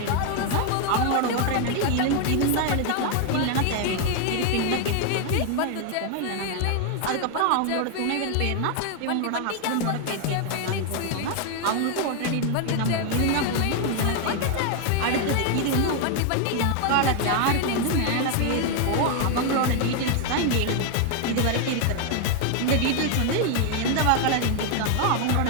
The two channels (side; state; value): both; different; correlation 0.00